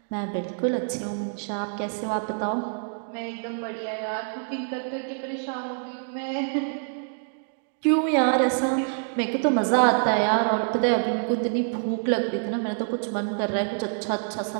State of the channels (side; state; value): left; silent; digital silence